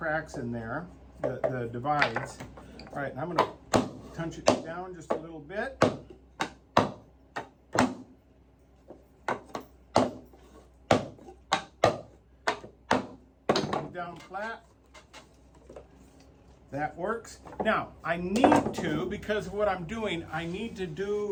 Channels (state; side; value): identical; both; correlation 1.00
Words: in there, the divides. All right, and I'm going to punch it down just a little bit. Down flat. That works. Now, I need to, because of what I'm doing, I need to